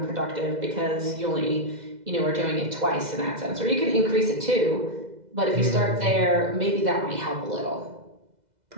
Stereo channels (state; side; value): late; left; 2.0 ms